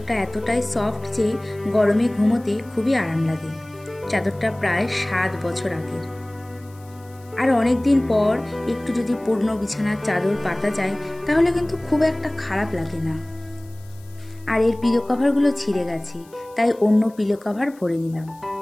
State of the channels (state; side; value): noise; left; hiss, 27 dB below the sound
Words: এতটাই সফট যে গরমে ঘুমোতে খুবই আরাম লাগে। চাদরটা প্রায় 7 বছর আগের। আর অনেক দিন পর একটু যদি পুরনো বিছানার চাদর পাতা যায়, তাহলে কিন্তু খুব একটা খারাপ লাগে না। আর এর পিলো কভারগুলো ছিঁড়ে গেছে, তাই অন্য পিলো কভার ভরে নিলাম।